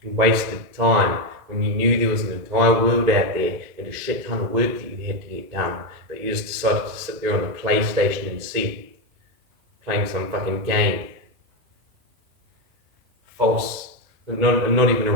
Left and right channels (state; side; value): late; left; 2.5 ms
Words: and wasted time when you knew there was an entire world out there and a shit ton of work that you had to get done, but you just decided to sit there on the PlayStation instead, playing some fucking game. False, not even a